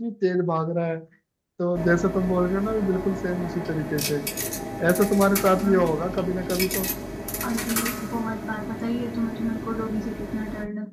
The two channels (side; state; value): both; identical; correlation 1.00